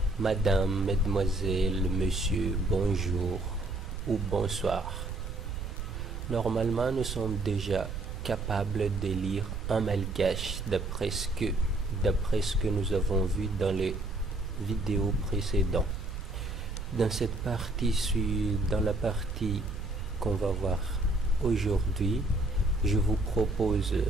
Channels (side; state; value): right; noise; rumble, 6 dB below the sound